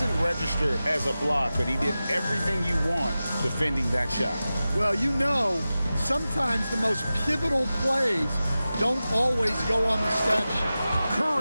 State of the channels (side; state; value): both; inverted; correlation -0.95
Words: register as a block, but he did everything you want defending that shot. Well, you know, sometimes the most pivotal plays don't always go on the stat sheet.